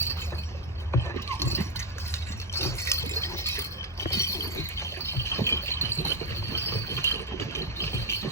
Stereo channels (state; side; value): normal; both; correlation 0.07